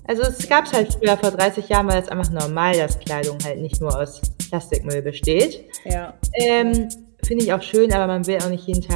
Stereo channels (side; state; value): left; silent; digital silence